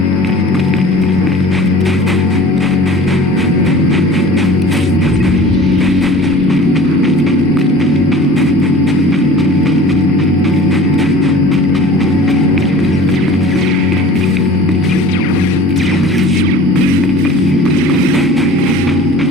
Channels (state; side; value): normal; both; correlation 0.43